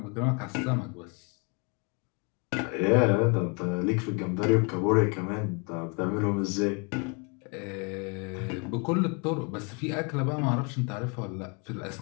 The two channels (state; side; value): quieter; right; 33.9 dB